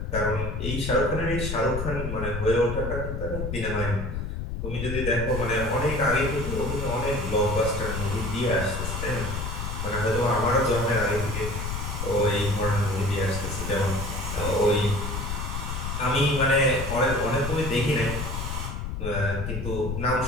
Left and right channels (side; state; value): left; noise; rumble, 4 dB below the sound